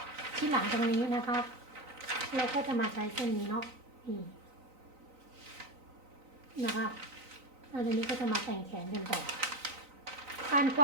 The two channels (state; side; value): late; left; 3.9 ms